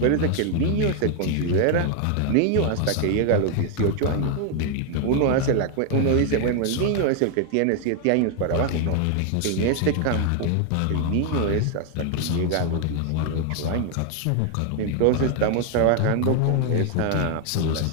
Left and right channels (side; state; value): both; different; correlation 0.00